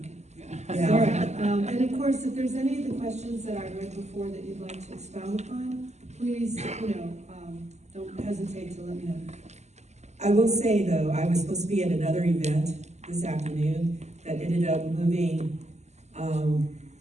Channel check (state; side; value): late; left; 0.33 ms